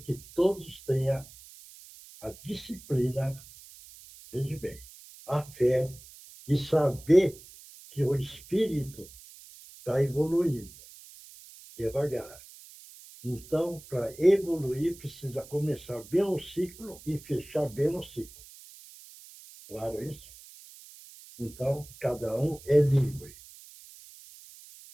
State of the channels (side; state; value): right; noise; hiss, 20 dB below the sound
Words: todos tenham a disciplina, veja bem, a fé e saber que o espírito está evoluindo devagar. Então, para evoluir, precisa começar bem o ciclo e fechar bem o ciclo. Claro isso? Então, cada um é livre.